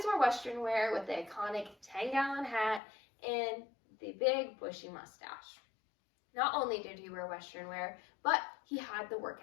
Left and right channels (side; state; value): right; drops out; at 2.8 s